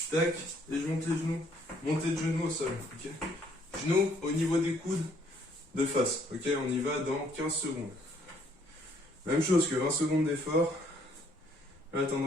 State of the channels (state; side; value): normal; both; correlation 0.66